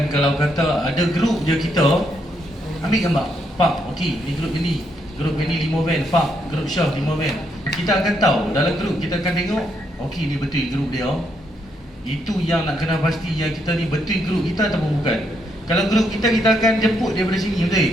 Kalau kata ada grup je kita, ambil gambar, pak, okey, ni grup ini 5 van, pak, grup Syah 5 van. Kita akan tahu dalam grup, kita akan tengok, okey ni betul grup dia. Itu yang nak kena pasti, yang kita ni betul grup kita ataupun bukan. Kalau grup kita akan jemput daripada sini, betul?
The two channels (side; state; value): both; normal; correlation 0.76